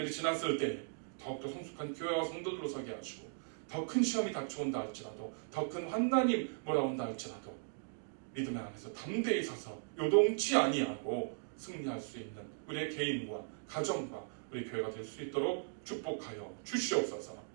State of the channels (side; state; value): left; silent; digital silence